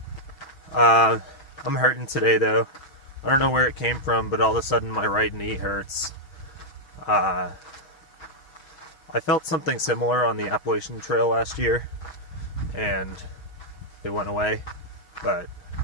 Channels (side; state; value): right; late; 6.3 ms